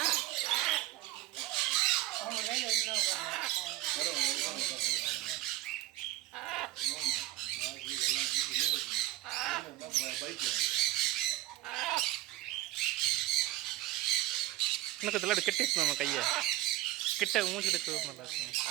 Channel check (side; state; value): left; quieter; 16.1 dB